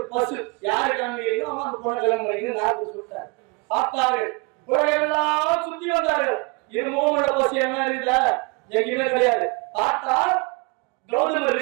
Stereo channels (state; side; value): quieter; left; 29.6 dB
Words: பசு யாரு காண்பிக்கிறீங்களோ அவங்க அந்த பொண்ணை கல்யாணம் பண்ணிக்கணும் நாரதர் சொல்லிட்டார். பார்த்தார்கள். உலகெல்லாம் சுத்தி வந்தார்கள். இருமுகம் உள்ள பசு என்ன இருக்குல்ல, எங்கேயுமே கிடையாது. பார்த்தால் கௌதம